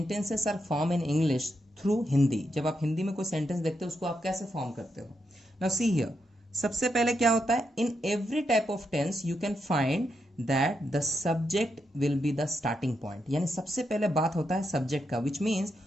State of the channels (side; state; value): both; normal; correlation 0.83